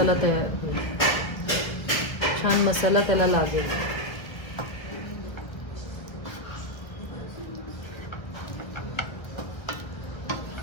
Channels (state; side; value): late; right; 1.5 ms